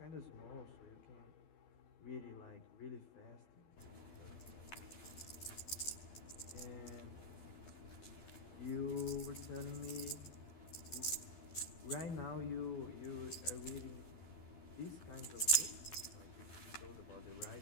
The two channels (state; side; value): late; right; 12 ms